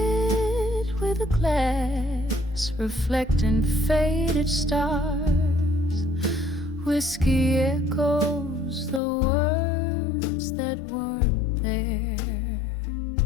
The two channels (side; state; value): right; drops out; at 9.0 s